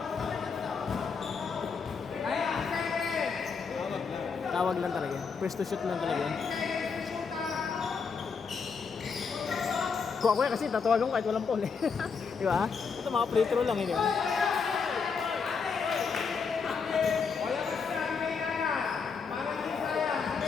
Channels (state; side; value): quieter; right; 5.5 dB